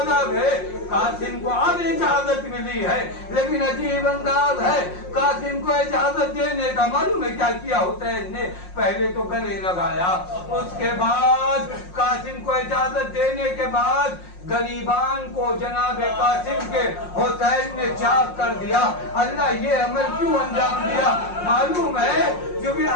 आ गए। कासिम को अब इजाजत मिली है, लेकिन अजीब अंदाज है कासिम को इजाजत देने का। मालूम है क्या किया हुसैन ने? पहले तो गले लगाया, उसके बाद कासिम को इजाजत देने के बाद गरीबान को जनाब कासिम के हुसैन ने चाक कर दिया। अल्लाह ये अमल क्यों अंजाम दिया? मालूम है क्योंकि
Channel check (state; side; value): late; right; 5.6 ms